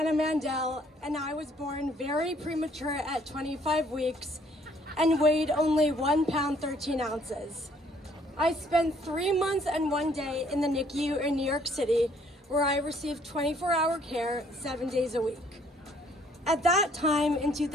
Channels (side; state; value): both; normal; correlation 0.63